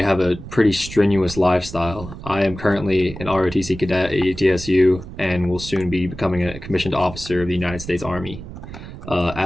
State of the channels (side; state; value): right; noise; rumble, 12 dB below the sound